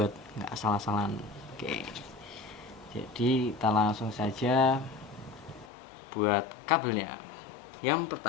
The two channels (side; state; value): right; drops out; at 5.7 s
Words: nggak salah-salahan. Oke, jadi kita langsung saja buat kabelnya. Yang